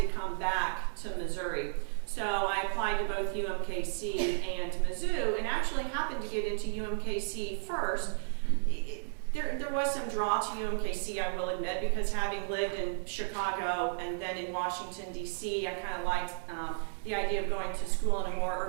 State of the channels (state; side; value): silent; left; digital silence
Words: come back to Missouri. So I applied to both UMKC and Mizzou, and actually happened to get into UMKC first. There was some draw to UMKC, I will admit, because having lived in Chicago and then in Washington, D.C., I kind of liked the idea of going to school in a more